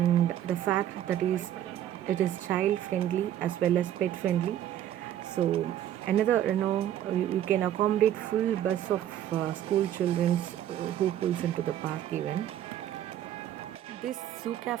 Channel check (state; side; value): quieter; left; 11.5 dB